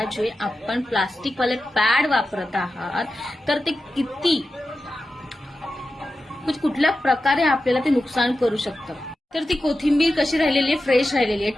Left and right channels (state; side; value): normal; both; correlation 0.92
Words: जे आपण प्लास्टिकवाले पॅड वापरत आहात तर ते किती कुठल्या प्रकारे आपल्याला ते नुकसान करू शकतं. तर ती कोथिंबीर कशी राहिलेली आहे? फ्रेश राहिलेली आहे,